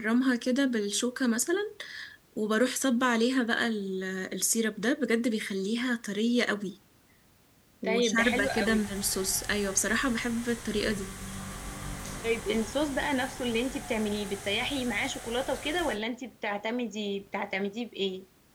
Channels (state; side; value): identical; both; correlation 1.00